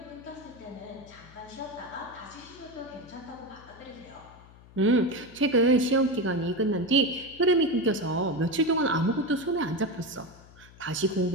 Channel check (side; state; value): left; noise; hum, 22 dB below the sound